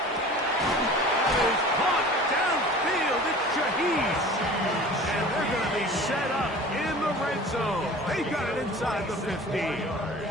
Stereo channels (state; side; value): normal; both; correlation 0.42